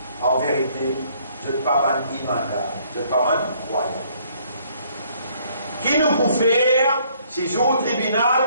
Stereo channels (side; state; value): both; inverted; correlation -0.64